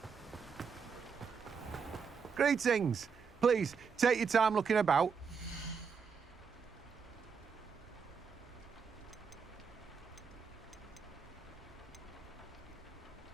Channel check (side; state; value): left; quieter; 6.0 dB